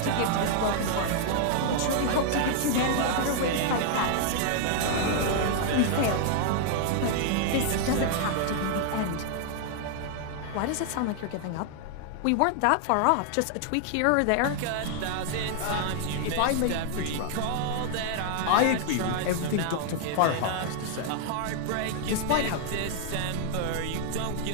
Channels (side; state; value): both; different; correlation 0.00